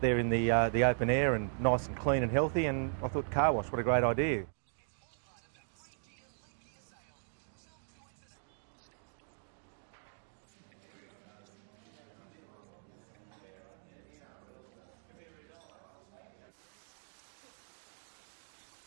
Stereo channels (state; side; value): silent; left; digital silence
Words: in the open air and nice and clean and healthy, and I thought car wash, what a great idea. Now you might think it's a bit of a step down, but this is a car wash with a difference. The staff does all the work while you sit back in air-conditioned comfort and watch it all happen while enjoying what's on offer at their hand wash cafe. Chris Johns came up with the idea and took it